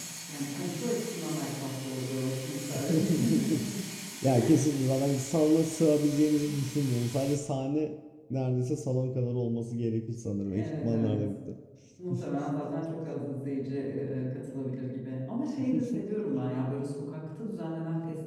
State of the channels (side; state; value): both; identical; correlation 1.00